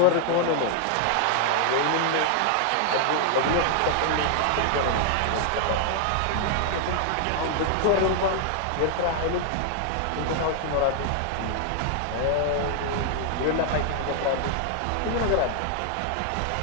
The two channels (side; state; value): both; different; correlation 0.00